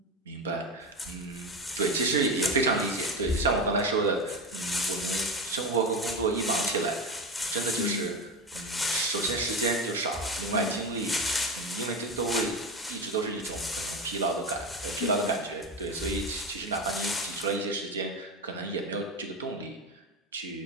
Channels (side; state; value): both; normal; correlation 0.20